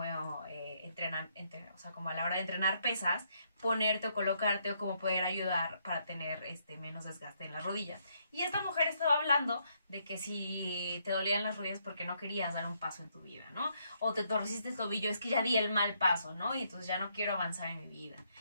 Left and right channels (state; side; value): inverted; both; correlation -0.74